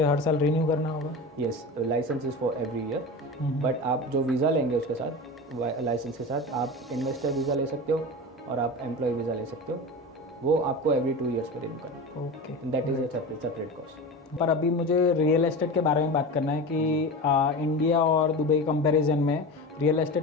हर साल रिन्यू करना होगा? Yes, licence is for every year, but आप जो वीज़ा लेंगे उसके साथ लाइसेंस के साथ आप इन्वेस्टर वीज़ा ले सकते हो और आप एम्प्लॉय वीज़ा ले सकते हो। वो आपको एवरी 2 ईयर्स पे रिन्यू करना ओके। है। That is a separate cost. पर अभी मुझे रियल एस्टेट के बारे में बात करना है कि इंडिया और दुबई कंपैरिजन में रियल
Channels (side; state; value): both; normal; correlation 0.28